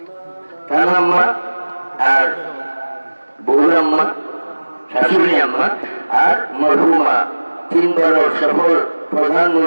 तान अम्मा और बउर अम्मा शाশুড়ি अम्मा और मरहुमा तीन बार सफल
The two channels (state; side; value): inverted; both; correlation -1.00